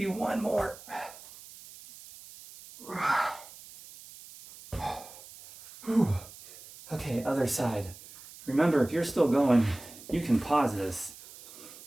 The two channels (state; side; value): noise; right; hiss, 18 dB below the sound